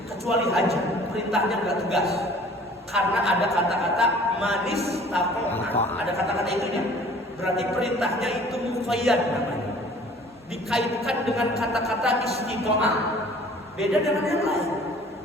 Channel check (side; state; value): both; normal; correlation 0.50